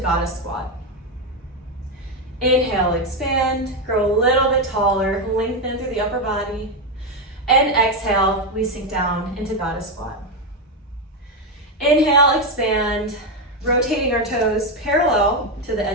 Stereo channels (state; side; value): normal; both; correlation 0.08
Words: squat. Inhale, expand, grow a little bit taller, lengthen through the upper body. And exhale, we sink down into goddess squat. Inhale, expand, rotating our toes parallel to the